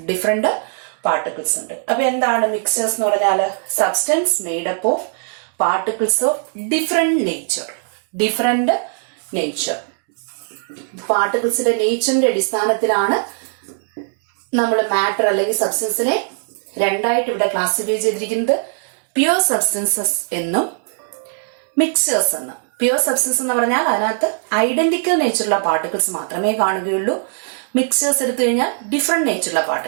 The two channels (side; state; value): left; silent; digital silence